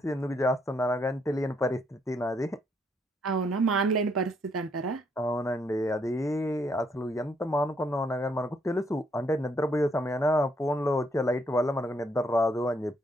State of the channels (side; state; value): both; normal; correlation 0.72